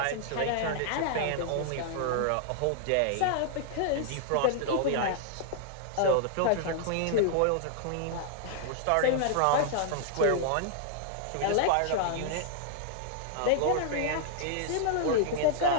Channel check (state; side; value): different; both; correlation -0.01